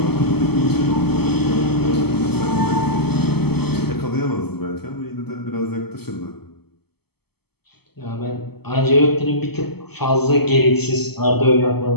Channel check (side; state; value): right; late; 0.96 ms